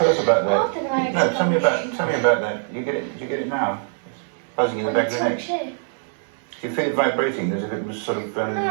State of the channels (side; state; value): left; silent; digital silence